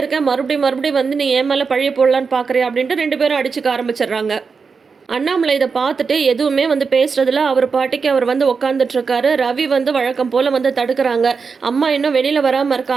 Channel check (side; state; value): left; quieter; 5.2 dB